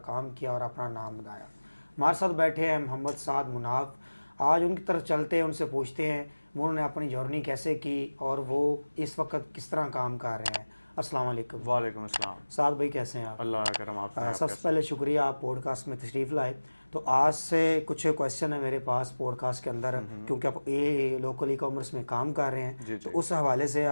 काम किया और अपना नाम बनाया। हमारे साथ बैठे हैं मोहम्मद साद मुनाफ। आज उनकी तरफ चलते हैं, उनसे पूछते हैं उन्होंने अपनी जर्नी कैसे की और वो इस वक्त किस तरह काम कर रहे हैं। अस्सलाम वालेकुम। वालेकुम अस्सलाम। साद भाई कैसे हैं आप? अल्लाह का करम। आप सबसे पहले शुक्रिया आप पॉडकास्ट में तशरीफ़ लाए। तो आज से कुछ क्वेश्चन है मेरे पास पॉडकास्ट के अंदर, क्योंकि आप ये लोकल ई कॉमर्स में काम कर रहे हैं, तो उस हवाले से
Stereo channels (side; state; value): both; inverted; correlation -1.00